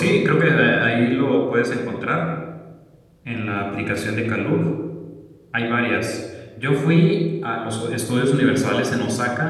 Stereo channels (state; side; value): identical; both; correlation 1.00